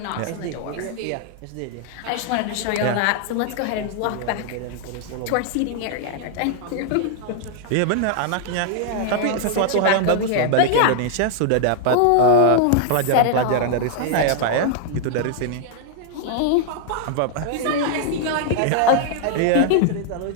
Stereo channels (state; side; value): different; both; correlation 0.00